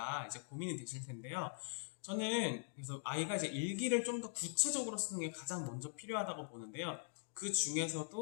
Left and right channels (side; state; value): right; silent; digital silence